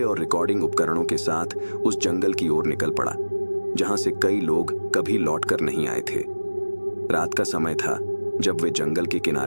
और रिकॉर्डिंग उपकरणों के साथ उस जंगल की ओर निकल पड़ा, जहां से कई लोग कभी लौटकर नहीं आए थे। रात का समय था जब वे जंगल के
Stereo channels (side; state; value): both; inverted; correlation -1.00